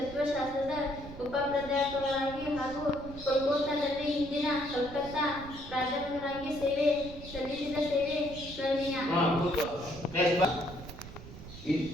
ಉಪಪ್ರಾಧ್ಯಾಪಕರಾಗಿ ಹಾಗೂ ಕೋಲ್ಕತ್ತಾದಲ್ಲಿ ಹಿಂದಿನ ಕಲ್ಕತ್ತಾ ಪ್ರಾಧ್ಯಾಪಕರಾಗಿ ಸೇವೆ ಸಲ್ಲಿಸಿದ ಸೇವೆ ಸ್ಮರಣೀಯ.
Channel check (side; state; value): right; noise; rumble, 14 dB below the sound